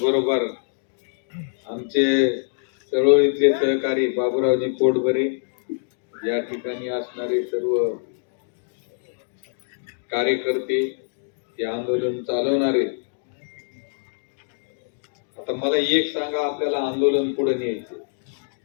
आमचे चळवळीतले सहकारी बाबूरावजी पोटभरे, या ठिकाणी असणारे सर्व कार्यकर्ते, हे आंदोलन चालवणारे. आता मला एक सांगा, आपल्याला आंदोलन पुढे न्यायचे,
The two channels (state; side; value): silent; right; digital silence